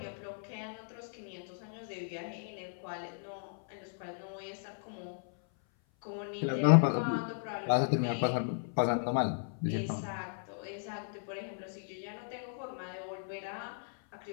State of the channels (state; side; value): silent; right; 54 dB below the other